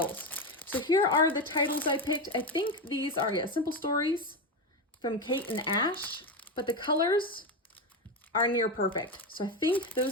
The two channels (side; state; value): both; normal; correlation 0.14